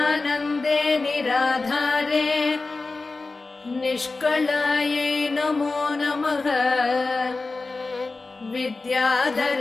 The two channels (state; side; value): quieter; right; 3.6 dB